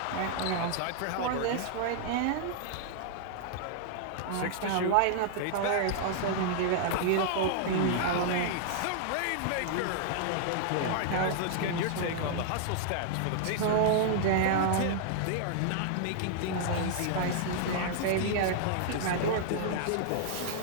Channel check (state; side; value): different; both; correlation -0.01